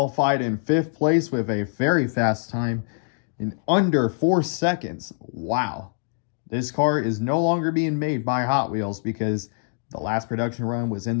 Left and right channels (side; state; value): right; silent; digital silence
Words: in 5th place with a very fast time in under 4 seconds. Wow. This car is no longer being made by Hot Wheels because the last production run was in